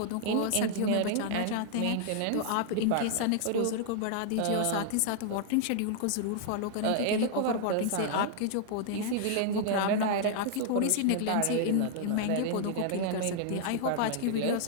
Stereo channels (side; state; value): both; different; correlation -0.01